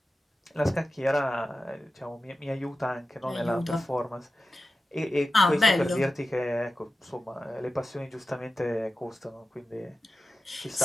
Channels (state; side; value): normal; both; correlation 0.93